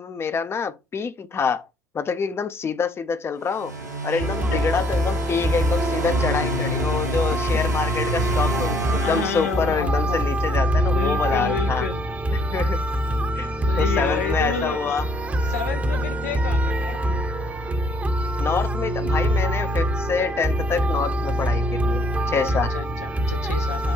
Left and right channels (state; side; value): normal; both; correlation 0.65